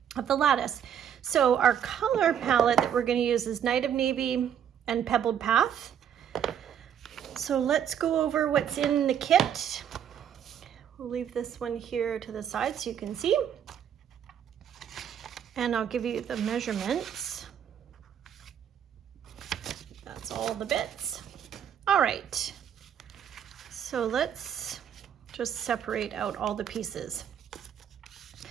of the lattice. So our color palette that we're going to use is Night of Navy and Pebbled Path. So let's go over what's in the kit. We'll leave this one here to the side so you can see. And I'll give you the measurements. That's all the bits. All right. So let's just separate out all the pieces.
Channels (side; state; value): left; quieter; 9.0 dB